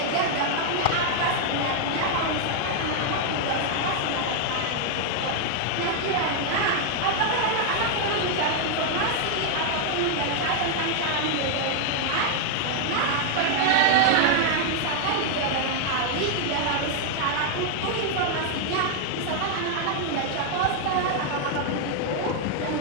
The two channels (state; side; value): different; both; correlation 0.00